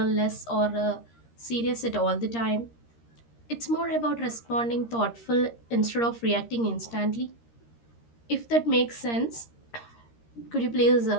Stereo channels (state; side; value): late; right; 13 ms